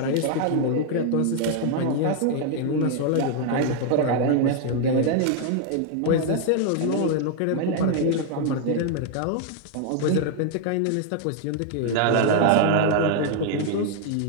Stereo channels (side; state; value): both; different; correlation 0.00